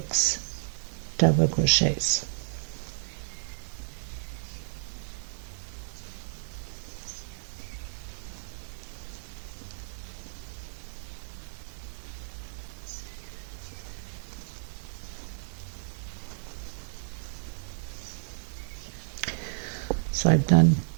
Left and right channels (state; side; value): silent; left; digital silence